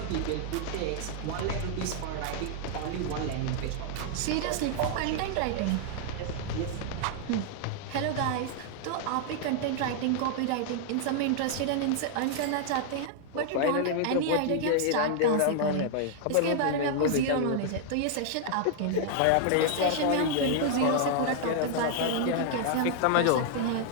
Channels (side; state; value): both; different; correlation -0.01